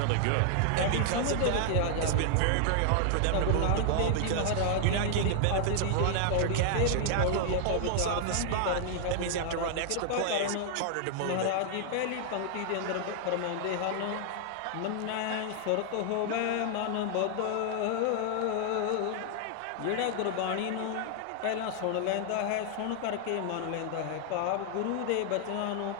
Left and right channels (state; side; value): different; both; correlation 0.00